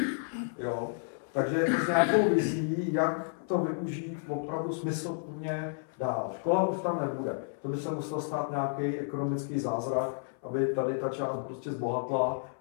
Jo? Takže s nějakou vizí, jak to využít opravdu smysluplně dál. Škola už tam nebude. To by se musel stát nějaký ekonomický zázrak, aby tady ta část prostě zbohatla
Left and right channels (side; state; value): right; silent; 57 dB below the other